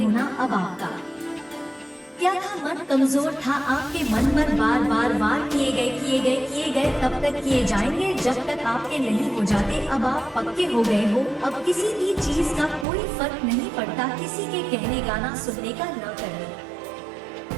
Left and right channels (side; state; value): left; drops out; at 12.9 s